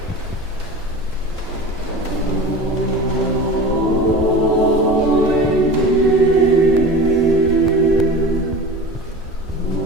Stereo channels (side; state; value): both; normal; correlation 0.34